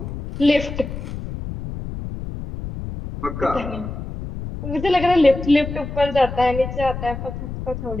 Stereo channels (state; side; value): noise; left; rumble, 8 dB below the sound